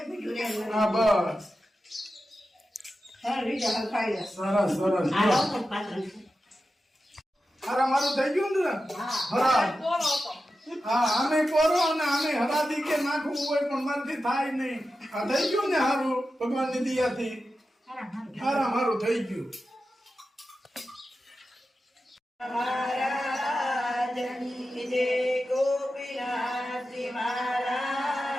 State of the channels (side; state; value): both; normal; correlation 0.92